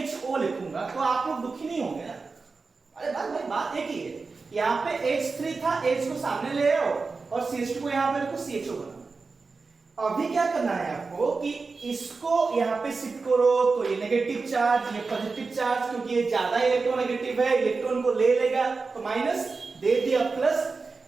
लिखूंगा तो आप लोग दुखी नहीं होंगे ना। अरे भाई बात एक ही है, यहां पे H3 था, H को सामने ले आओ और CH2 को यहां पे रखो, CHO बना। अभी क्या करना है आपको कि इसको यहां पे शिफ्ट करो, तो ये नेगेटिव चार्ज, ये पॉजिटिव चार्ज, क्योंकि ये ज्यादा इलेक्ट्रोनेगेटिव है, इलेक्ट्रॉन को ले लेगा तो माइनस दे दिया प्लस,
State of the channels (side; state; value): left; quieter; 4.3 dB